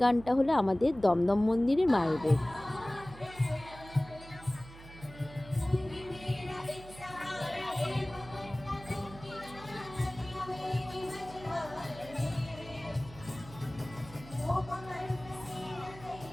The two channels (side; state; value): right; noise; hum, 17 dB below the sound